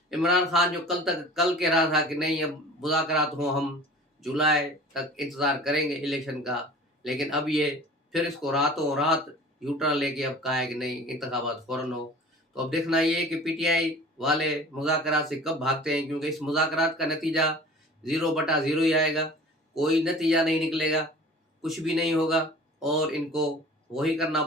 इमरान खान जो कल कह रहा था कि नहीं, अब मुज़ाकरात हों, हम जुलाई तक इंतज़ार करेंगे इलेक्शन का, लेकिन अब ये फिर इसको रातों रात यू टर्न लेके अब कहा है कि नहीं, इंतखाबात फ़ौरन हो। तो अब देखना ये है कि पीटीआई वाले मुज़ाकरात से कब भागते हैं, क्योंकि इस मुज़ाकरात का नतीजा 0/0 ही आएगा। कोई नतीजा नहीं निकलेगा, कुछ भी नहीं होगा, और इनको वही करना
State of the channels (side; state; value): both; normal; correlation 0.43